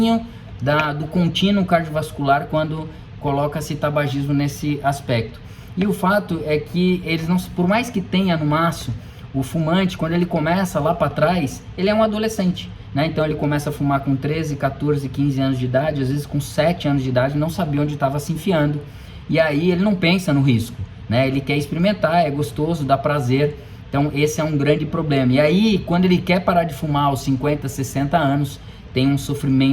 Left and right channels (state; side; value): identical; both; correlation 1.00